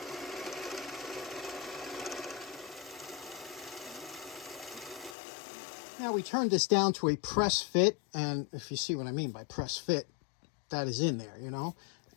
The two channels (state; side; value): drops out; right; at 5.2 s